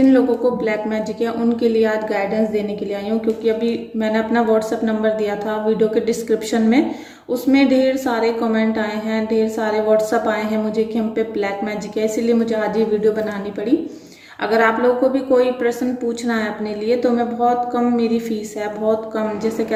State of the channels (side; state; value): both; identical; correlation 1.00